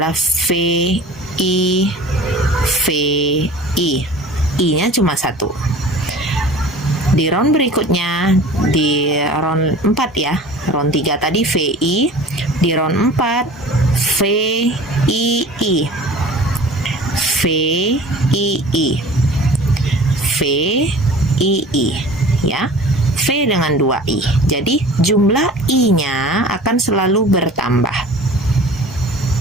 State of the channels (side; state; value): both; normal; correlation 0.42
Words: VI, VI, I-nya cuma 1. Di round berikutnya, di round 4 ya, round 3 tadi VI, di round 4 VII, VII, VII ya, V dengan 2I. Jadi jumlah I-nya akan selalu bertambah,